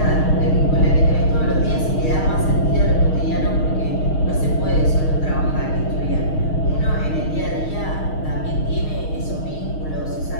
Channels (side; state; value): right; late; 6.4 ms